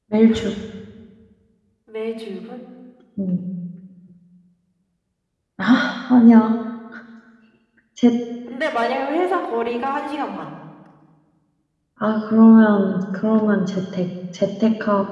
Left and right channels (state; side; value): identical; both; correlation 1.00